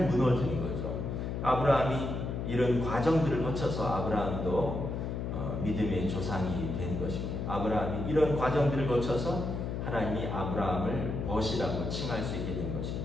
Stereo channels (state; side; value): noise; left; hum, 3 dB below the sound